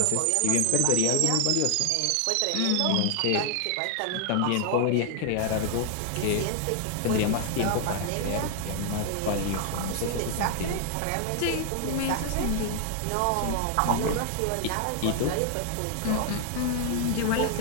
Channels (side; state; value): both; different; correlation 0.00